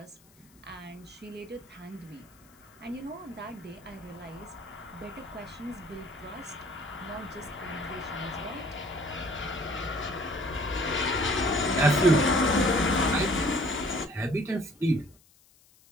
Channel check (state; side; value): noise; left; hiss, 29 dB below the sound